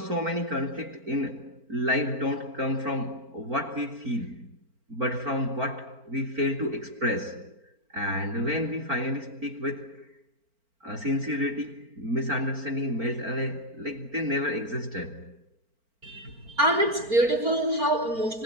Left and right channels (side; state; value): left; late; 4.4 ms